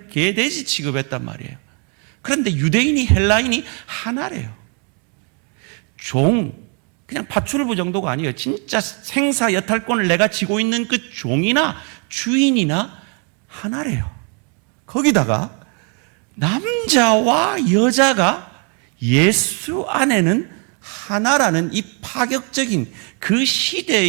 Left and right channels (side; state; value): left; quieter; 37.3 dB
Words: 개돼지 취급했단 말이에요. 그런데 유대인이 헬라인이 하나래요. 그냥 파출부 정도가 아니에요. 진짜 생사 여탈권을 내가 쥐고 있는 그 종이나 주인이나 하나래요. 거기다가 남자와 여자가 예수 안에는 하나라는 이 파격적인 그